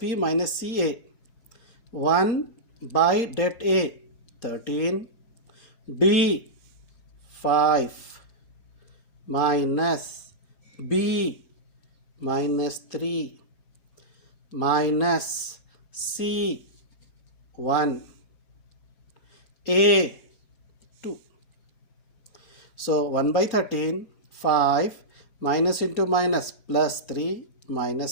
minus CA. 1 by det A 13, D 5 minus B minus 3 minus C 1 A 2. So 1 by 13, 5 minus into minus plus 3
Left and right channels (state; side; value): late; right; 4.2 ms